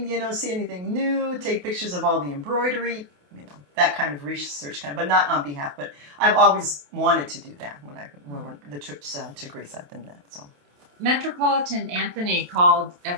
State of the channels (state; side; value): late; left; 28 ms